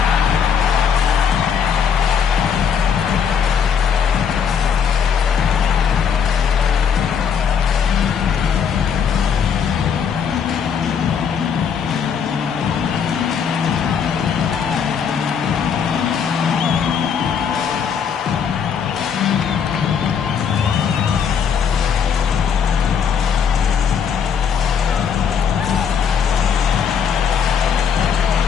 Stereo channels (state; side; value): quieter; right; 7.2 dB